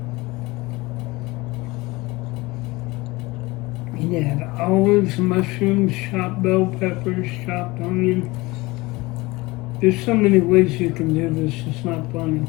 You had olives, mushrooms, chopped bell peppers, chopped onion. There's so many ways you can do this, it's not funny.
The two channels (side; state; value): right; quieter; 22.2 dB